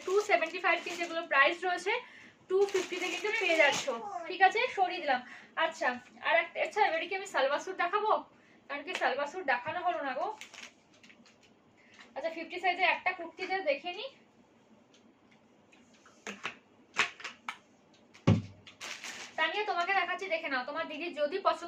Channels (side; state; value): both; identical; correlation 1.00